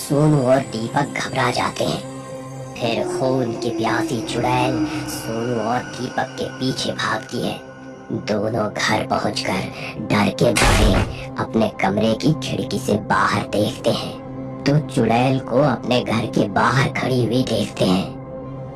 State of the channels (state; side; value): identical; both; correlation 1.00